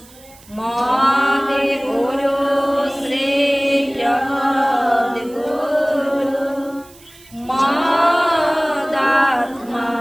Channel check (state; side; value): noise; right; hiss, 24 dB below the sound